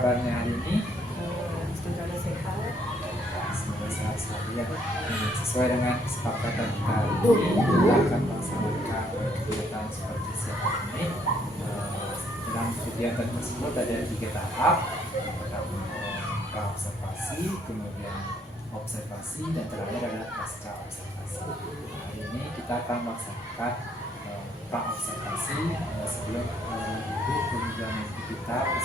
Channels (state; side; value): normal; both; correlation 0.68